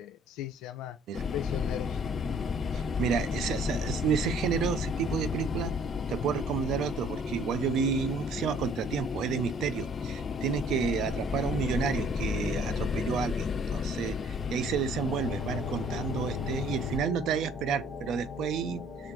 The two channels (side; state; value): both; normal; correlation 0.58